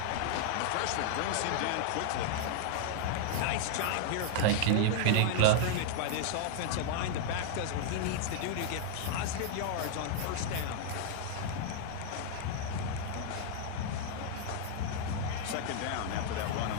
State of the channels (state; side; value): different; both; correlation 0.00